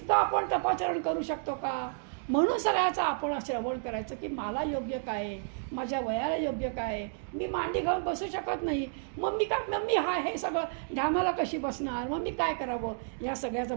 आपण तपाचरण करू शकतो का? म्हणून सगळ्याचं आपण श्रवण करायचं की मला योग्य काय आहे, माझ्या वयाला योग्य काय आहे. मी मांडी घालून बसू शकत नाही, मग मी काय, मग मी हे सगळं ढामाला कशी बसणार, मग मी काय करावं या सगळ्याचं.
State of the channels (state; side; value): silent; left; digital silence